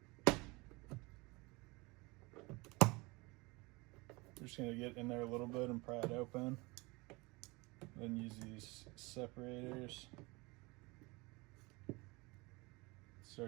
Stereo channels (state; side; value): quieter; left; 25.0 dB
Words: We're just going to get in there a little bit and pry it open. Then use these separators.